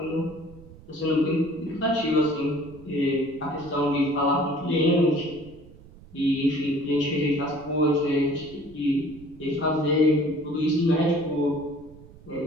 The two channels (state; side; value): noise; right; rumble, 21 dB below the sound